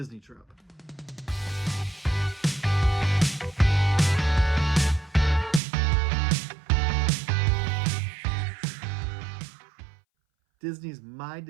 trip. Disney's My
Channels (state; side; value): drops out; left; at 5.6 s